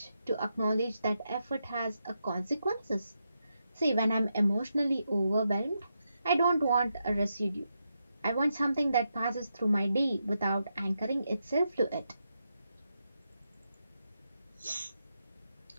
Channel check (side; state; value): both; inverted; correlation -0.85